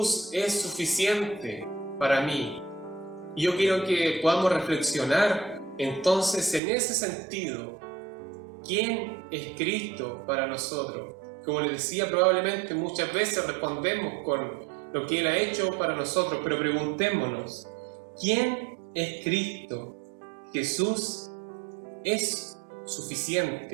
es suficiente para mí. Y yo quiero que podamos reflexionar entonces en ese sentido. ¿Quién es Cristo para nosotros? Como les decía, probablemente muchas veces respondemos con lo que Él ha hecho para nosotros, pero preguntémonos: ¿quién es Cristo? Jesús es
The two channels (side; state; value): left; drops out; at 6.6 s